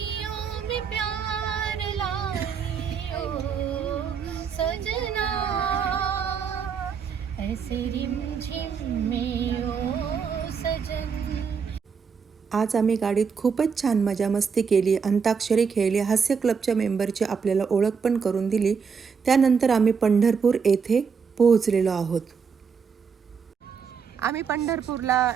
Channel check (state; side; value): quieter; left; 6.1 dB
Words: में प्यार लाई ओ सजना, ऐसे रिमझिम में ओ सजन. आज आम्ही गाडीत खूपच छान मजा मस्ती केली, अंताक्षरी खेळली, हास्य क्लबच्या मेंबरची आपल्याला ओळख पण करून दिली. त्यानंतर आम्ही पंढरपूर येथे पोहोचलेलो आहोत. आम्ही पंढरपूरला